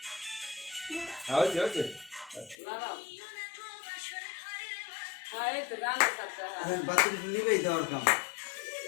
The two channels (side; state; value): right; drops out; at 2.6 s